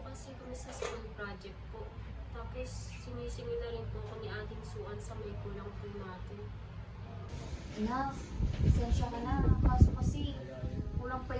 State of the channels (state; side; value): identical; both; correlation 1.00